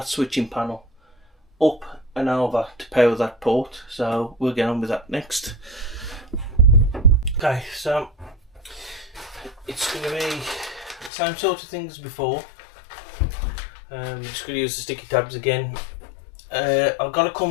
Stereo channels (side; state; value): right; drops out; at 11.1 s